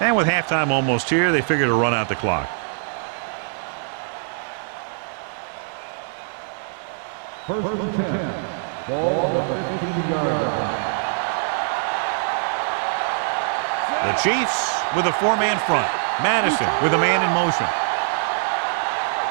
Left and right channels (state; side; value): silent; left; digital silence